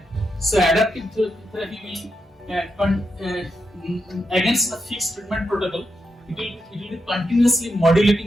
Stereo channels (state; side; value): normal; both; correlation 0.85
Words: So, adaptive therapy will against the fixed treatment protocol. It will be continuously